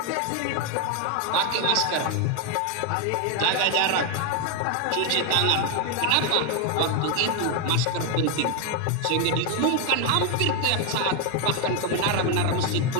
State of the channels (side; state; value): both; different; correlation 0.01